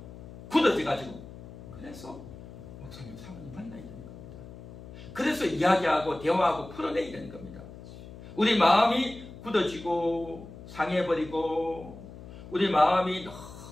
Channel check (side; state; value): left; noise; hum, 15 dB below the sound